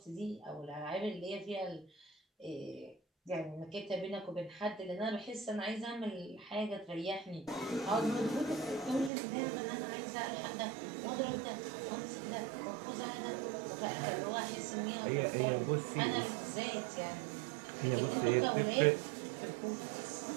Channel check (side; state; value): left; drops out; at 9.1 s